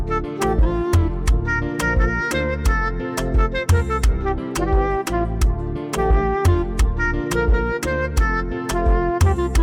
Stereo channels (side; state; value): both; identical; correlation 1.00